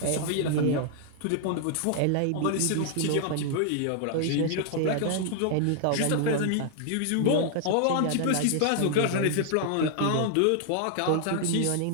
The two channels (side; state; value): both; different; correlation 0.00